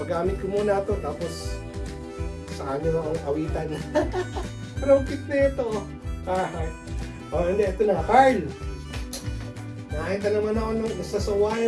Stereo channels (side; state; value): both; identical; correlation 1.00